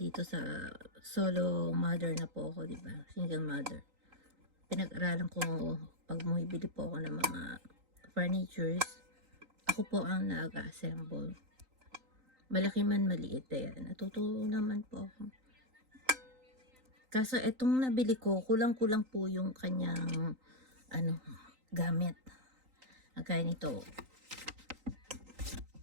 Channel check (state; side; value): late; left; 3.9 ms